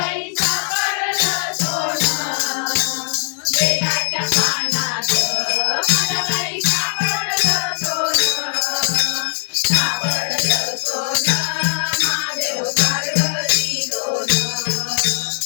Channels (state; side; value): silent; right; digital silence